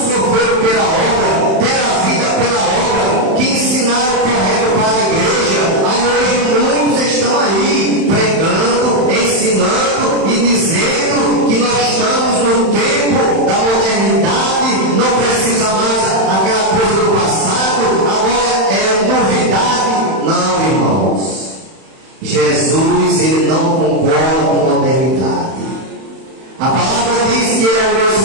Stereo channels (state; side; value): late; left; 31 ms